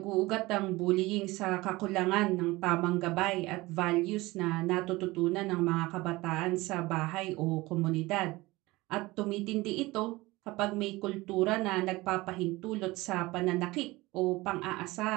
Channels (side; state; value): left; quieter; 20.7 dB